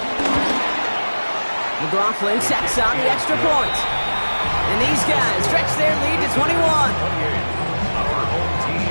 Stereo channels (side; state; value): both; inverted; correlation -1.00